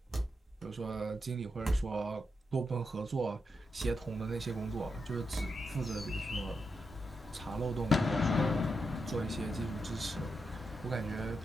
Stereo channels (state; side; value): normal; both; correlation 0.85